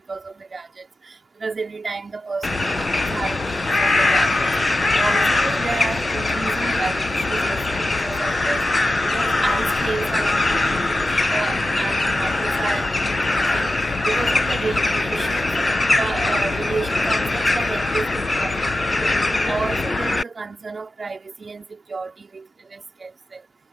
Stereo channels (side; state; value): both; normal; correlation 0.93